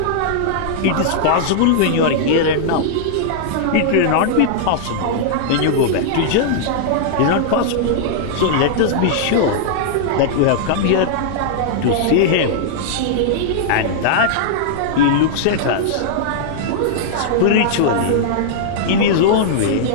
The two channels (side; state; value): both; different; correlation -0.02